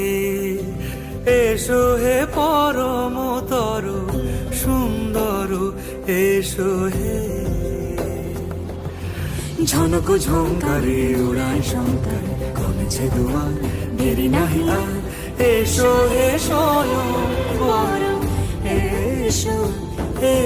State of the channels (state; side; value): identical; both; correlation 1.00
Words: এসো হে পরমতর সুন্দর এসো হে। ঝনক ঝঙ্কারে উড়ায় শঙ্কার কমেছে দুয়ার দেরি নাহি আর এসো হে স্বয়ং বর এসো